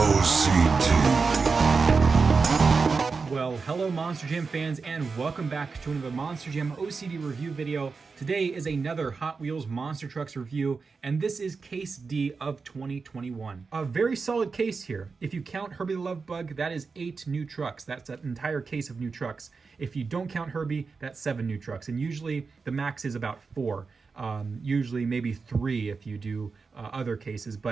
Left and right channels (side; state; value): left; quieter; 4.7 dB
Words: Well, hello Monster Jam fans, and welcome back to another Monster Jam OCD review video. Today is another Hot Wheels Monster Trucks review, and this is Case D of 2021. A very solid case here. If you count Herbie the Love Bug, that is 8 new trucks. That's an entire case of new trucks. If you don't count Herbie, that's 7 new trucks, and usually the max is about 4. Usually maybe 3 if you do other cases,